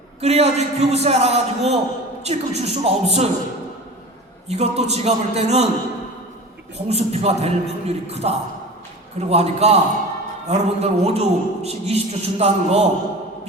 그래야지 교부세 알아가지고 찔끔 줄 수가 없어요. 이것도 제가 볼 때는 공수표가 될 확률이 크다. 그러고 하니까 여러분들 5조씩 20조 준다는 거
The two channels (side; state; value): both; normal; correlation 0.35